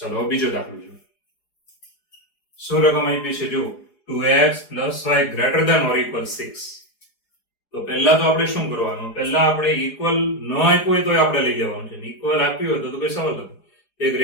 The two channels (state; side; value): late; right; 4.9 ms